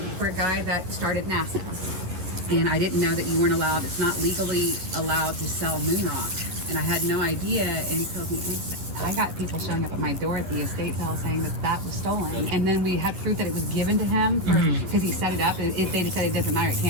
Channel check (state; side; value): late; left; 11 ms